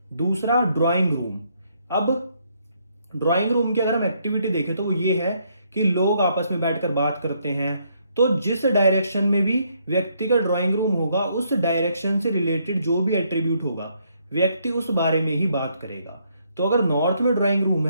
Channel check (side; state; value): both; inverted; correlation -0.72